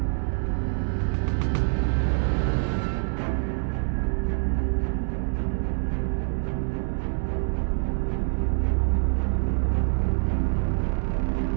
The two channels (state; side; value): silent; left; 61 dB below the other